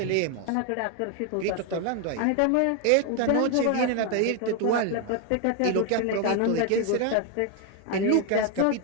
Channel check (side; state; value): both; different; correlation 0.01